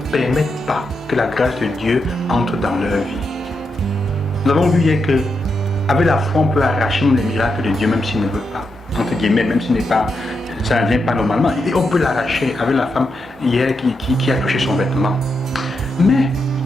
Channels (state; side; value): normal; both; correlation 0.84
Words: pas que la grâce de Dieu entre dans leur vie. Nous avons vu hier que avec la foi, on peut arracher les miracles de Dieu même s'il ne veut pas, entre guillemets, même s'il n'est pas, ça ne vient pas normalement. Et on peut l'arracher avec la femme hier qui a touché son vêtement. Mais